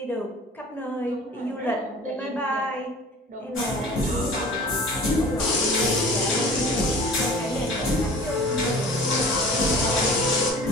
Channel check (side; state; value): both; normal; correlation 0.43